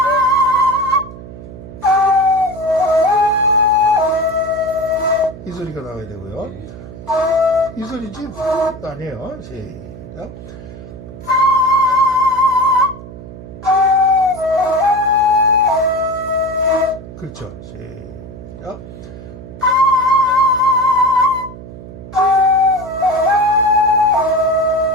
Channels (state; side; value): noise; right; hum, 14 dB below the sound